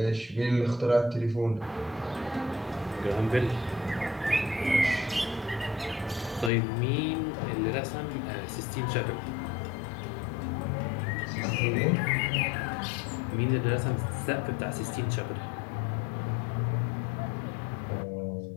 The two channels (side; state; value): right; drops out; at 6.5 s